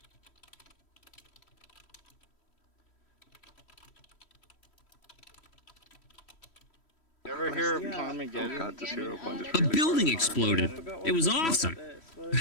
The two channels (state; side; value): late; right; 3.1 ms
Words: You ever hear of Carmageddon? Oh god, this hero point is A building exploded. It was awesome.